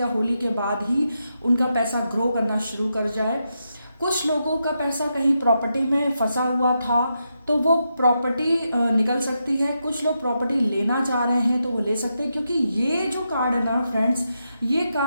होली के बाद ही उनका पैसा ग्रो करना शुरू कर जाए। कुछ लोगों का पैसा कहीं प्रॉपर्टी में फंसा हुआ था, तो वो प्रॉपर्टी निकल सकती है। कुछ लोग प्रॉपर्टी लेना चाह रहे हैं तो वो ले सकते हैं, क्योंकि ये जो कार्ड है ना फ्रेंड्स, ये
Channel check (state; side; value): inverted; both; correlation -0.85